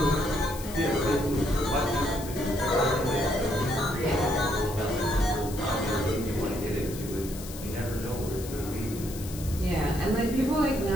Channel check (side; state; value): left; noise; hiss, 13 dB below the sound